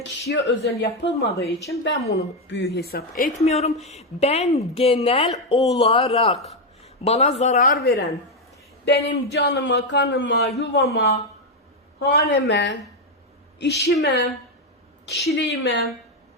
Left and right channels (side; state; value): both; normal; correlation 0.05